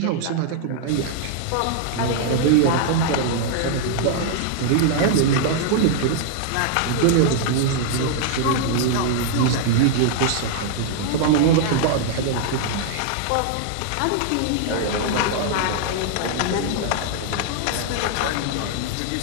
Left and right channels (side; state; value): both; different; correlation 0.00